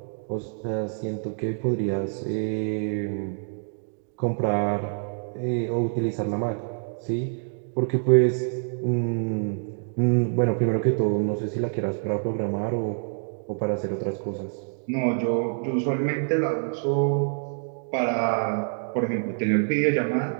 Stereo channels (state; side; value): silent; left; digital silence